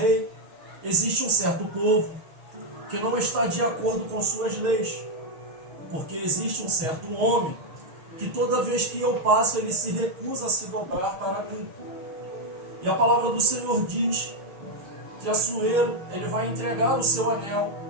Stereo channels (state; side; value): late; left; 6.4 ms